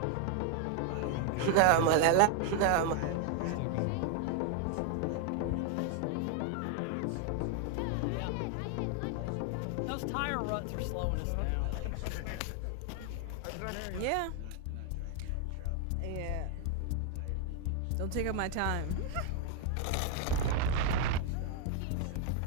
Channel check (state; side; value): different; both; correlation 0.00